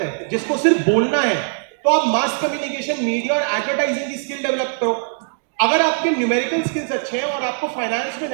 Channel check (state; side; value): silent; left; digital silence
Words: जिसको सिर्फ बोलना है, तो आप मास कम्युनिकेशन, मीडिया और एडवर्टाइजिंग की स्किल डेवलप करो। अगर आपके न्यूमेरिकल स्किल्स अच्छे हैं और आपको फाइनेंस में